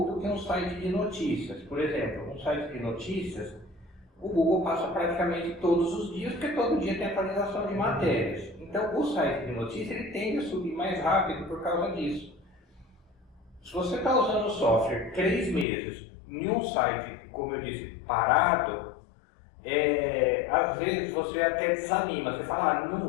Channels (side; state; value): right; drops out; at 15.7 s